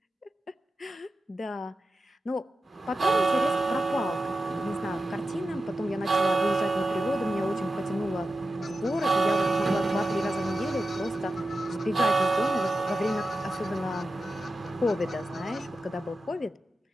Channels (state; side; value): normal; both; correlation 0.91